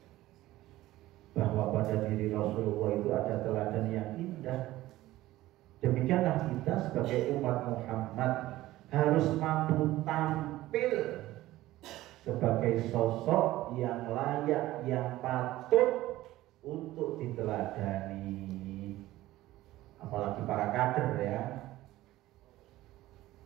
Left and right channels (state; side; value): quieter; left; 16.3 dB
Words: Bahwa pada diri Rasulullah itu ada teladan yang indah. Demikianlah kita sebagai umat Muhammad harus mampu tampil sebagai sosok yang layak, yang patut untuk diteladani. Apalagi para kader ya.